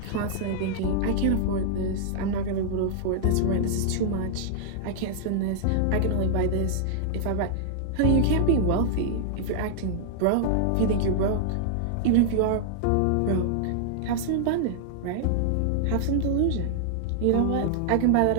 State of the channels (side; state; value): both; different; correlation -0.01